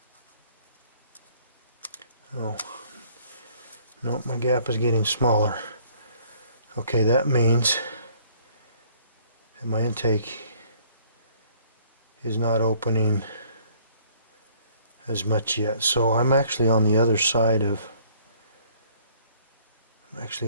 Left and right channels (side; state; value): both; inverted; correlation -0.59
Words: oh no, my gap is getting smaller. Okay, that means that my intake is not opening as much yet. So I'm actually on the other side of